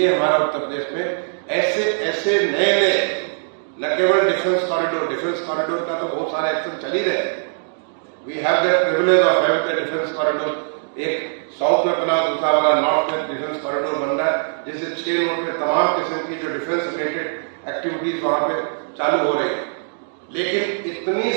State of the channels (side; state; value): left; silent; digital silence